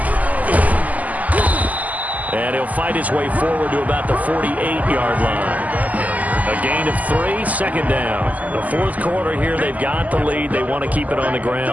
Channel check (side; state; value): left; late; 0.077 ms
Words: And he'll fight his way forward to about the 48-yard line. A gain of 3, 2nd down. The 4th quarter here, they've got the lead. They want to keep it on the